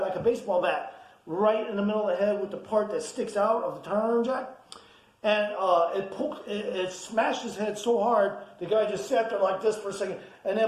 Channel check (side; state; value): both; identical; correlation 1.00